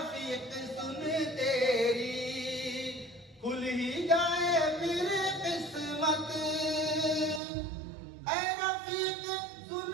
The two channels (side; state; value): left; drops out; at 7.4 s